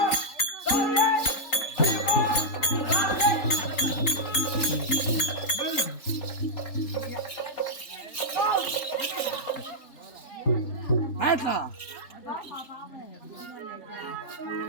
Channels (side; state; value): right; late; 3.8 ms